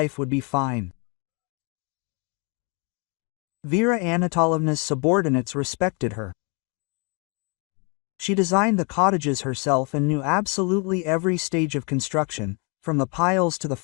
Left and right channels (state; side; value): quieter; right; 33.7 dB